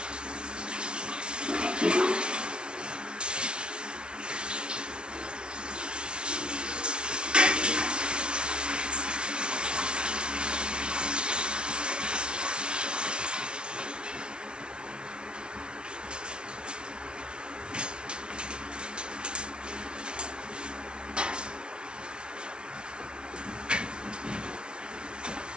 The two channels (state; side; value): late; left; 0.056 ms